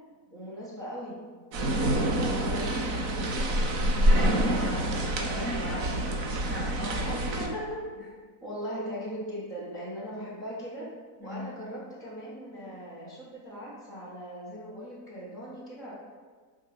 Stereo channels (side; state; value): left; late; 4.0 ms